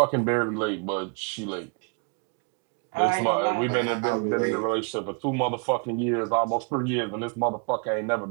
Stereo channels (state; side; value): quieter; left; 35.5 dB